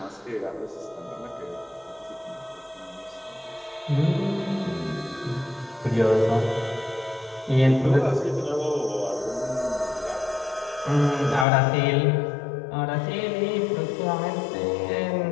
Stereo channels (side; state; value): right; drops out; at 11.5 s